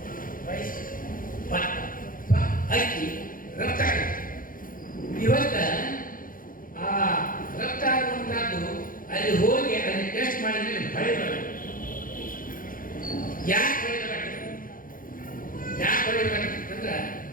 ರೈಸ್, ಅಕ್ಕಿ ರಫ್ತಾಗಿದೆ. ಇವತ್ತ ಆ ರಫ್ತಾಗುವಂತಹದ್ದು ಅಲ್ಲಿ ಹೋಗಿ ಅಲ್ಲಿ ಟೆಸ್ಟ್ ಮಾಡಿದ್ರೆ ಮಳೆ ಬರಬೇಕು. ಯಾಕೆ ಹೊಡೆಯಬೇಕಾಗ್ತದೆ?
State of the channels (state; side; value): late; right; 0.40 ms